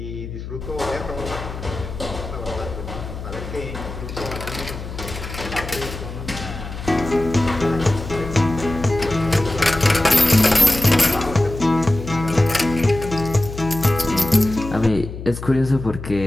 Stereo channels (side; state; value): left; noise; hum, 9 dB below the sound